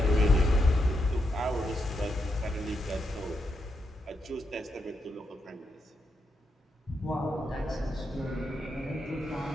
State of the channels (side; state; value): both; normal; correlation 0.83